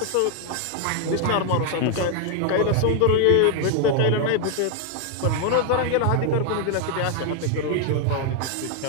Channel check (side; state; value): both; different; correlation 0.00